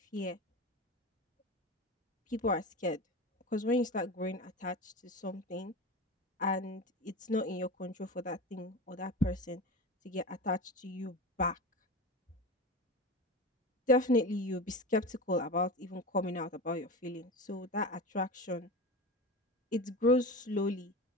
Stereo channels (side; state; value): both; normal; correlation 0.27